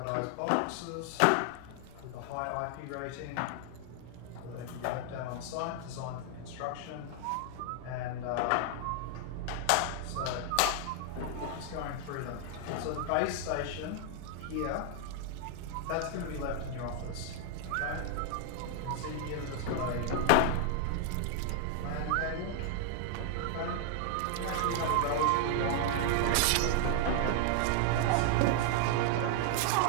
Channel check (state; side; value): different; both; correlation 0.00